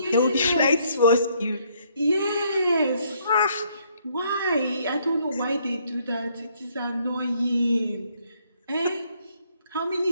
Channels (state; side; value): inverted; both; correlation -0.68